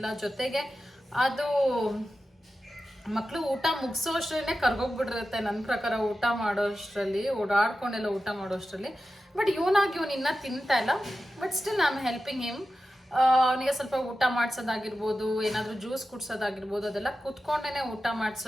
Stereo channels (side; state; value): both; normal; correlation 0.92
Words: ಜೊತೆಗೆ ಅದು ಮಕ್ಕಳು ಊಟ ಮುಗಿಸೋ ಅಷ್ಟರಲ್ಲೇ ಕರ್ಗೋಗ್ಬಿಟ್ಟಿರುತ್ತೆ ನನ್ನ ಪ್ರಕಾರ. ಊಟ ಮಾಡೋಷ್ಟರಲ್ಲಿ ಓಡಾಡ್ಕೊಂಡೆಲ್ಲ ಊಟ ಮಾಡೋಷ್ಟರಲ್ಲಿ. ಬಟ್ ಇವನಾಗಿ ಇವನು ಇನ್ನೂ ತಿಂತಾ ಇಲ್ಲ. But still I am helping him. ಅವನಿಗೆ ಸ್ವಲ್ಪ ಊಟ ಮಾಡಿಸೋದಾಗಿರ್ಬೋದು, ಏನಾದರೂ ಜ್ಯೂಸ್ ಕುಡ್ಸೋದಾಗಿರ್ಬೋದು, ಅದೆಲ್ಲ ಕುತ್ಕೊಂಡೇ ಊಟ